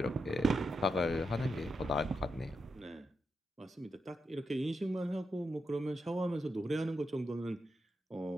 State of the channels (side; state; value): both; normal; correlation 0.86